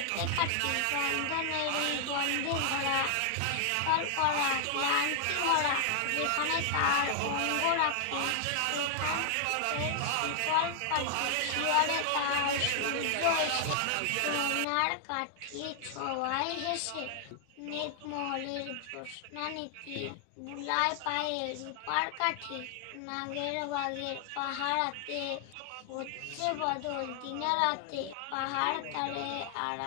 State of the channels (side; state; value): both; different; correlation 0.00